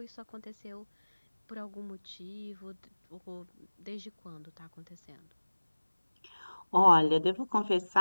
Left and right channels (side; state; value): both; inverted; correlation -1.00